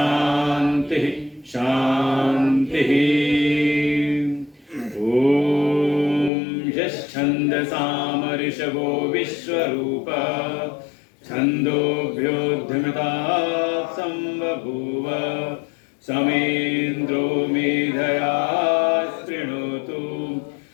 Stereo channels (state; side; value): drops out; right; at 6.3 s